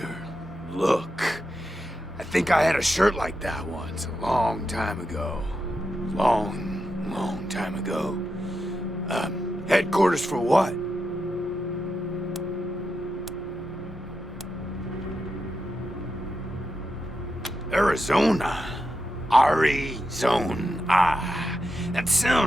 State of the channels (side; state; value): both; normal; correlation 0.87